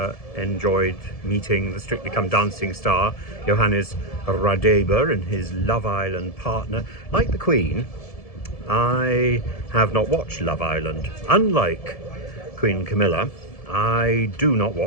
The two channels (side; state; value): right; late; 1.7 ms